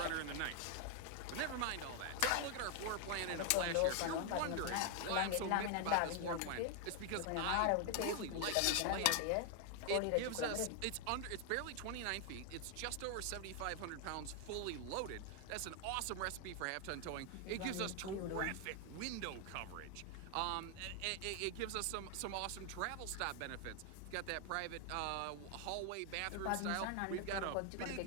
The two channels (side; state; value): both; different; correlation 0.00